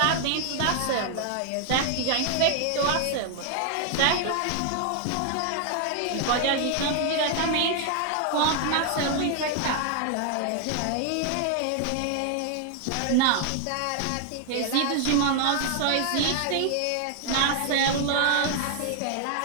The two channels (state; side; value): different; both; correlation 0.00